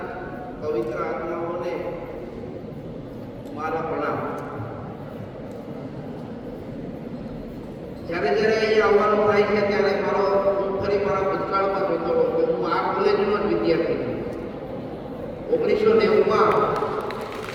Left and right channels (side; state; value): both; identical; correlation 1.00